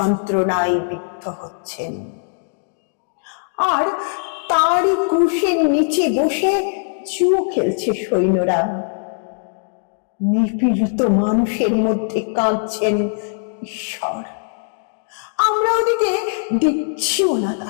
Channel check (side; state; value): right; silent; digital silence